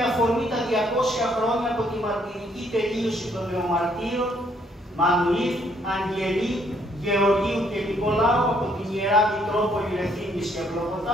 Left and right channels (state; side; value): normal; both; correlation 0.68